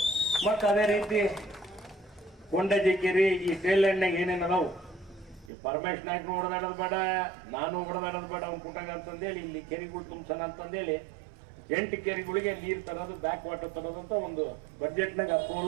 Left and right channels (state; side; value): drops out; left; at 5.5 s